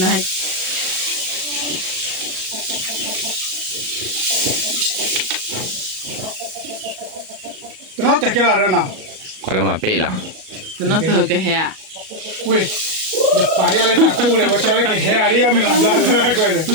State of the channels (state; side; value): late; left; 37 ms